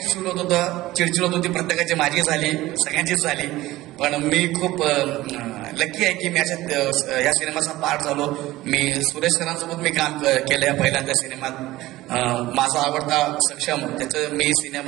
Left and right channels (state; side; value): quieter; left; 17.4 dB